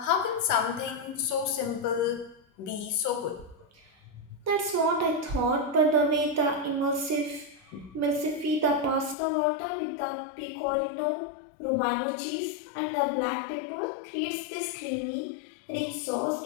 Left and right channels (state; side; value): drops out; right; at 9.2 s